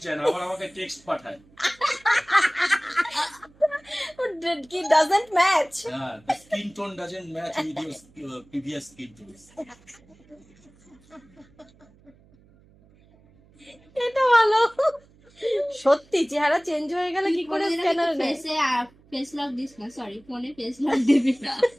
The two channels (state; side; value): noise; right; hum, 29 dB below the sound